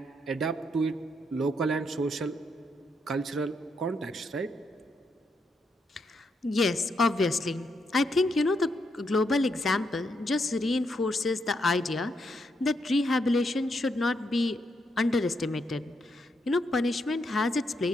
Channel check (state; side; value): normal; both; correlation 0.79